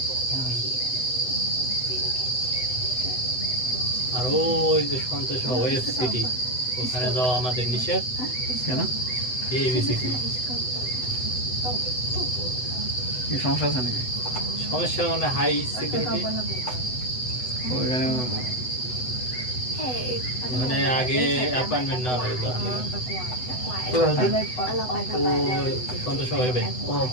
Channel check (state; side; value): late; right; 8.0 ms